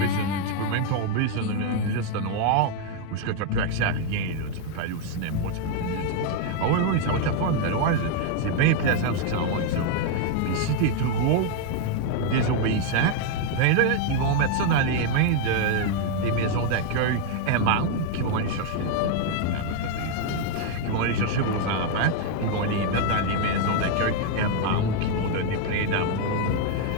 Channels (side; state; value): both; different; correlation 0.00